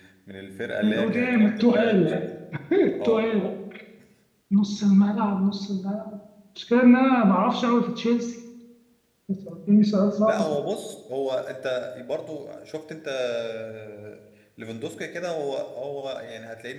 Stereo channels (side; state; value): both; identical; correlation 1.00